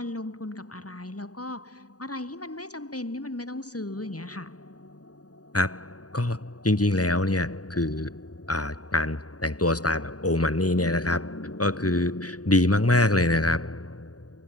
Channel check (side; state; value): right; late; 0.68 ms